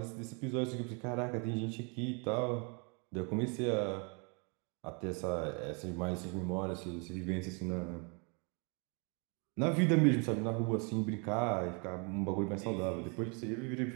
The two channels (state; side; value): quieter; left; 34.8 dB